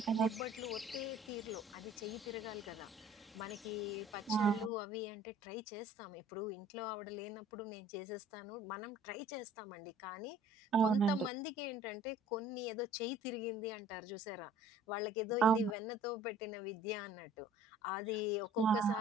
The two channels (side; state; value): both; normal; correlation 0.51